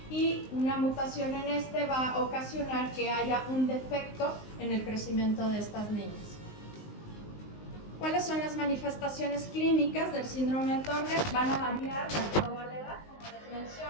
y una mutación en este va a ocasionar que haya un defecto en el crecimiento de estas niñas. ¿Cuáles son las manifestaciones clínicas del síndrome de Turner? Van a variar de acuerdo a la edad, como les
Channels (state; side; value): late; right; 19 ms